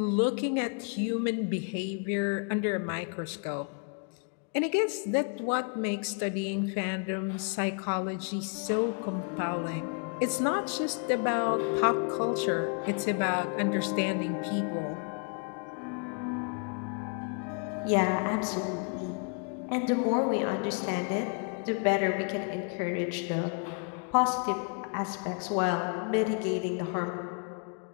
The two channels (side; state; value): right; quieter; 38.5 dB